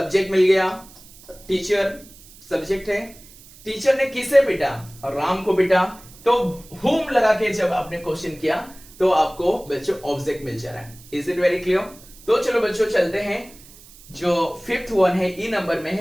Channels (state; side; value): noise; right; hiss, 22 dB below the sound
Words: मिल गया, टीचर सब्जेक्ट है। टीचर ने किसे पीटा, राम को पीटा, तो होम लगा के जब आपने क्वेश्चन किया तो आपको बच्चों ऑब्जेक्ट मिल जा रहा है। Is it very clear? तो चलो बच्चों चलते हैं, जो 5th वन है ई नंबर में